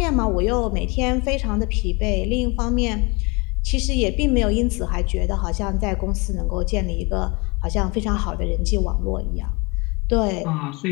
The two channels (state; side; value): quieter; right; 28.6 dB